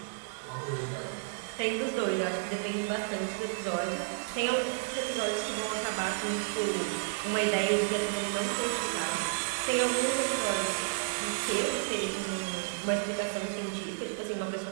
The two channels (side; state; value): left; silent; digital silence